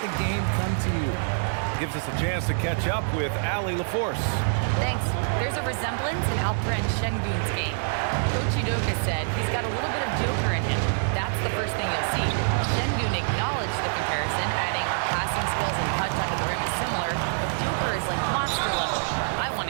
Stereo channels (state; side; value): silent; left; 61 dB below the other